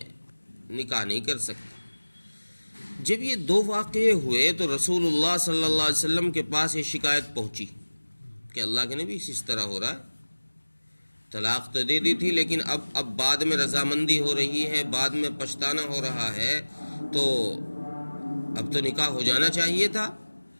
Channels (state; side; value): inverted; both; correlation -1.00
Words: نکاح نہیں کر سکتا. جب یہ دو واقعے ہوئے تو رسول اللہ صلی اللہ علیہ وسلم کے پاس یہ شکایت پہنچی کہ اللہ کے نبی اس طرح ہو رہا ہے، طلاق تو دے دی تھی لیکن اب بعد میں رضامندی ہو رہی ہے، بعد میں پچھتانا ہو رہا ہے، تو اب تو نکاح ہو جانا چاہیے تھا.